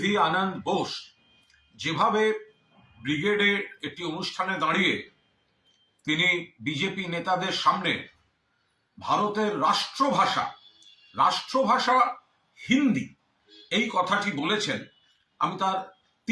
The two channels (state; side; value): identical; both; correlation 1.00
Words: আনন্দ বোস যেভাবে ব্রিগেডে একটি অনুষ্ঠানে দাঁড়িয়ে তিনি বিজেপি নেতাদের সামনে ভারতের রাষ্ট্রভাষা হিন্দি এই কথাটি বলেছেন, আমি তার